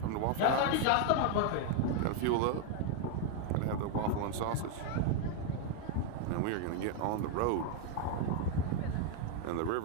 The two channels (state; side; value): different; both; correlation 0.00